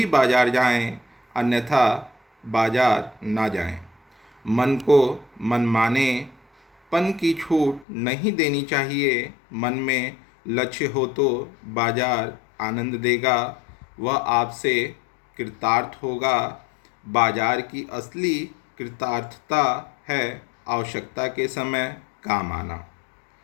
बाजार जाएं, अन्यथा बाजार ना जाएं। मन को मनमाने पन की छूट नहीं देनी चाहिए। मन में लक्ष्य हो तो बाजार आनंद देगा, वह आपसे कृतार्थ होगा। बाजार की असली कृतार्थता है आवश्यकता के समय काम आना।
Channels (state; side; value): drops out; right; at 7.9 s